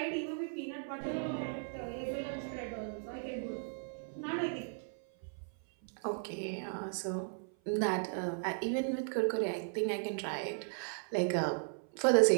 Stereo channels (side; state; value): left; silent; 54 dB below the other